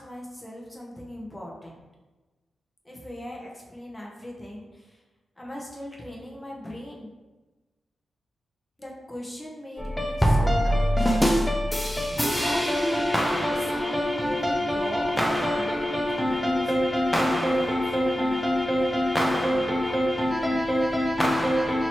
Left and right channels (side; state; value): both; normal; correlation 0.93